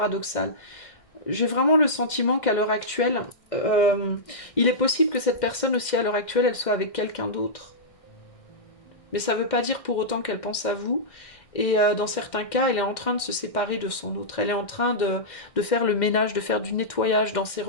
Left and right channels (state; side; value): late; right; 1.6 ms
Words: J'ai vraiment le sentiment qu'à l'heure actuelle, il est possible que cette personne aussi à l'heure actuelle, elle soit avec quelqu'un d'autre. Mais ça ne veut pas dire pour autant qu'elle pense à vous. Et dans certains cas, elle est en train de se séparer de son autre. Elle est en train de faire le ménage, de faire du nettoyage dans ses